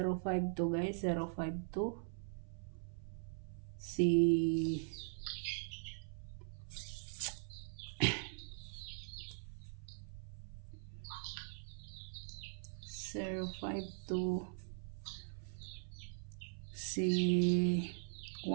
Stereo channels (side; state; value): left; silent; 50 dB below the other